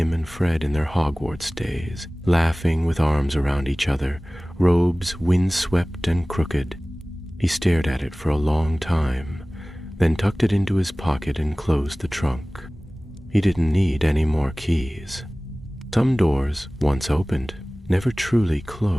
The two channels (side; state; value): both; normal; correlation 0.98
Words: and Fred in their Hogwarts days, laughing with arms around each other, robes windswept and crooked. He stared at it for a long time, then tucked it into his pocket and closed the trunk. He didn't need any more keys. Some doors, once opened, never truly